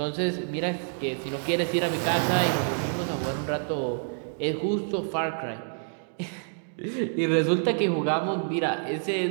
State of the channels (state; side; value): silent; left; digital silence